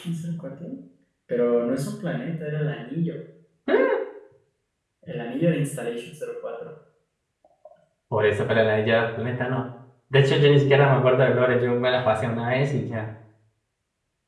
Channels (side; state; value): both; identical; correlation 1.00